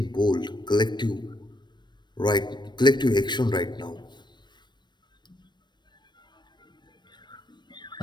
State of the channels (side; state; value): right; late; 0.22 ms